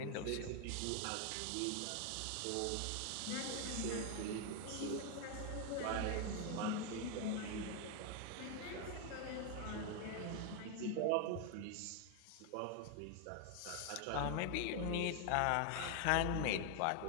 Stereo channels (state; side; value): different; both; correlation 0.00